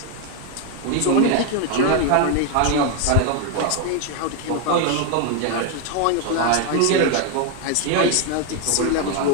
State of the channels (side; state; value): both; different; correlation 0.01